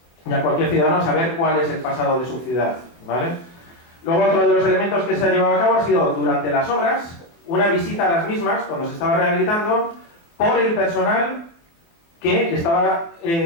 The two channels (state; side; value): late; right; 24 ms